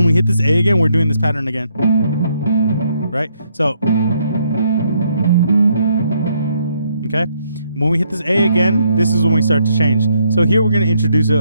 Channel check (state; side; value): inverted; both; correlation -0.73